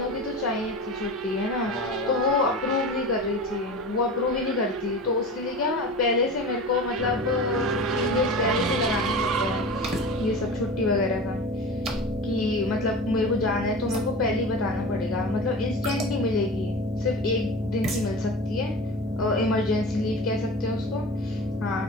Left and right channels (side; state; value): both; normal; correlation 0.32